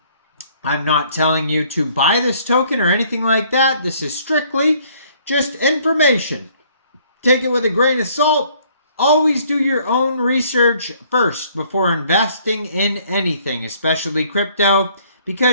I'm not telling you to buy this token or anything like that. This is strictly just information. Take it with a grain of salt. Always do your own research first before investing in anything, especially crypto,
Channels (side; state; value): both; inverted; correlation -0.61